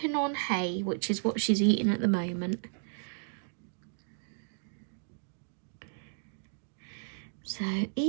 on hay, which is what she's eating at the moment. So,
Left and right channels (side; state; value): left; silent; digital silence